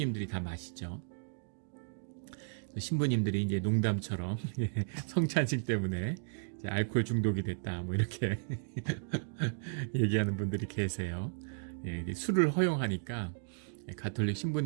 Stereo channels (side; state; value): left; silent; digital silence